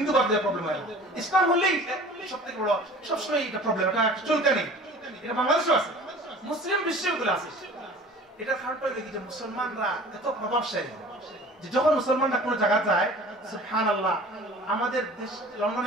দিয়ে প্রবলেম হয় না। ইসলাম হলেই সবথেকে বড়, সবসময় এটা প্রবলেম, এটা চলতে নেই। এটা বাংলাদেশও আছে, মুসলিম বিশ্বগুলো আছে। এটার কারণটা হলো কি যে মুসলমানরা এত প্রভাবশালী যে যখন মুসলমানরা কোনো জায়গা যায়, সুবহানাল্লাহ, আমাদের দেশ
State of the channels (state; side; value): normal; both; correlation 0.44